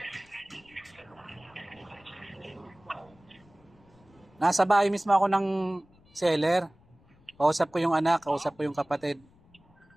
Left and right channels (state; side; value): noise; left; rumble, 29 dB below the sound